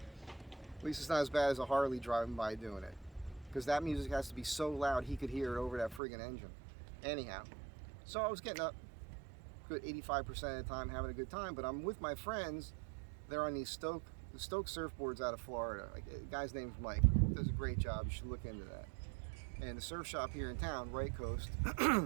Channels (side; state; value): left; drops out; at 6.0 s